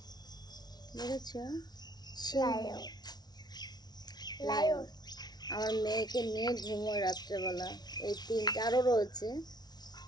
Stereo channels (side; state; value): right; late; 0.19 ms